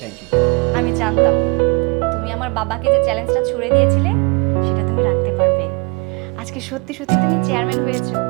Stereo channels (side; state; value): left; quieter; 31.0 dB